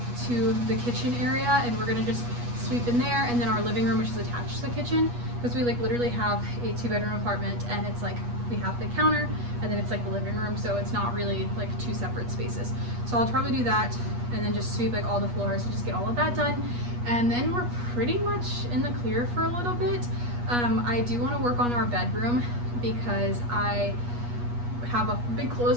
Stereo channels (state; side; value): late; left; 8.3 ms